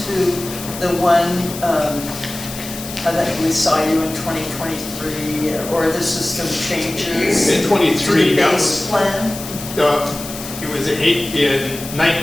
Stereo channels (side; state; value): left; noise; hiss, 11 dB below the sound